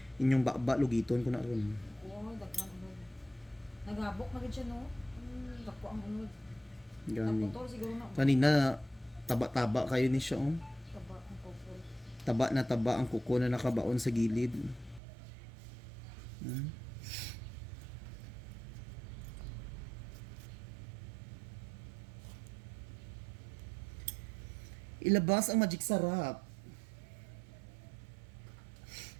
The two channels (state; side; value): drops out; left; at 15.0 s